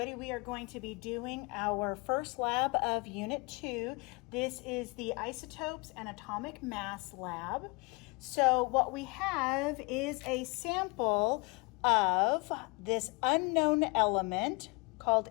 we are going to be doing our first lab of Unit 2. This is the Isotopes and Atomic Mass lab. So what we have is a sample of this unknown element called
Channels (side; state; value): right; quieter; 28.4 dB